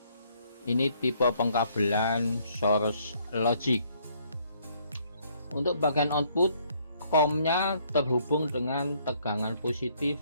Ini tipe pengkabelan Source Logic. Untuk bagian output, COM-nya terhubung dengan tegangan positif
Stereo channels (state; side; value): inverted; both; correlation -0.66